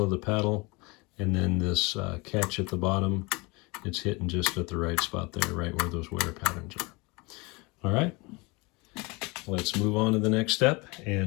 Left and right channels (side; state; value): right; quieter; 26.4 dB